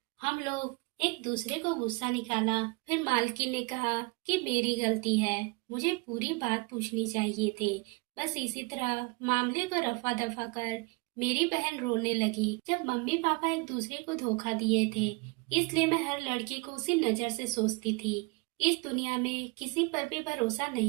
हम लोग एक दूसरे को गुस्सा निकाला। फिर मालकिन ने कहा कि मेरी गलती है, मुझे पूरी बात पूछनी चाहिए थी। बस इसी तरह मामले को रफा दफा कर मेरी बहन रोने लगी। जब मम्मी पापा एक दूसरे को धोखा दिए थे, इसलिए मैं हर लड़के को उसी नजर से सोचती थी। इस दुनिया में किसी पर भी भरोसा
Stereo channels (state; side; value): quieter; left; 27.2 dB